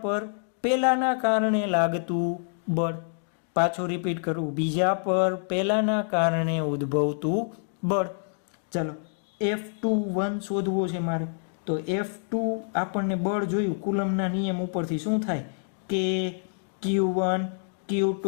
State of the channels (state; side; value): silent; right; 60 dB below the other